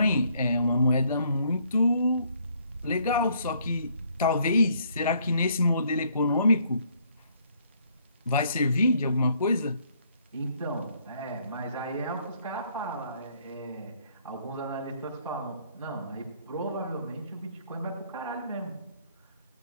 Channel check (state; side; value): inverted; both; correlation -0.66